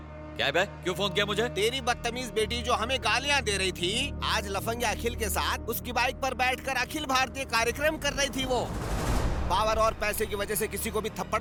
क्या है बे? क्यों फोन किया मुझे? तेरी बदतमीज बेटी जो हमें गालियां दे रही थी, आज लफंगे अखिल के साथ उसकी बाइक पर बैठकर अखिल भारतीय कार्यक्रम कर रही थी। वो पावर और पैसे की वजह से किसी को भी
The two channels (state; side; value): identical; both; correlation 1.00